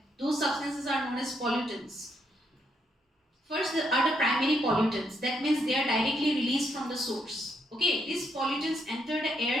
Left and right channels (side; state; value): both; normal; correlation 0.75